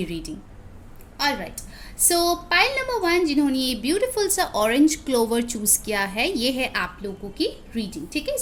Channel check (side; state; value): both; identical; correlation 1.00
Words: रीडिंग। ऑलराइट, सो पाइल नंबर 1 जिन्होंने ये ब्यूटीफुल सा ऑरेंज क्लोवर चूज किया है, ये है आप लोगों की रीडिंग। ठीक है,